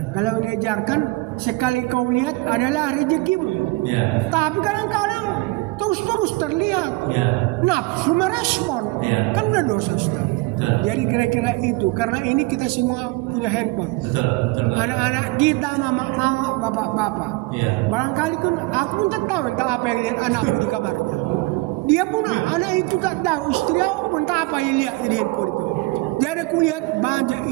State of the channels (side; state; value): left; quieter; 23.2 dB